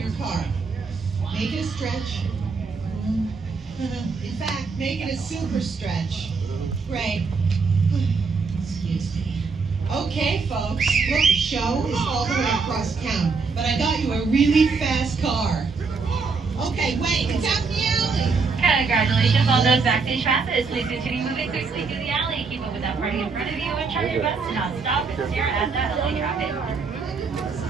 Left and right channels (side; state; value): left; quieter; 4.7 dB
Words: car. Make it a stretch. In fact, make it a super stretch. Great. Excuse me. Okay, folks. Look, the show is all the way across town, but I got you a really fast car. Okay, wait, it's out in the alley. Congratulations on those backstage passes. Please continue moving quickly through the alley. Keep up with that party in front of you and try your best to not stop and stare at that LA traffic.